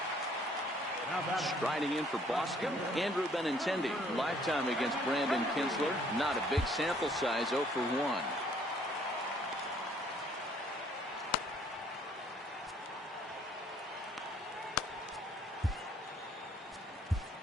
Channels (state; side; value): normal; both; correlation 0.62